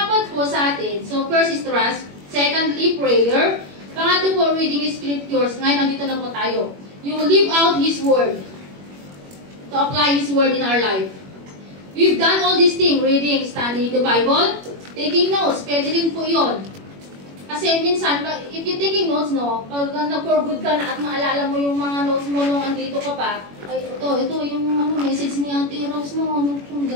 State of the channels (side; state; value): left; late; 21 ms